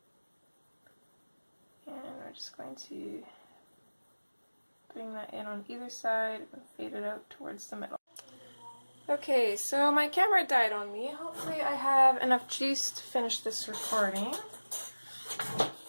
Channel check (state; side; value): inverted; both; correlation -1.00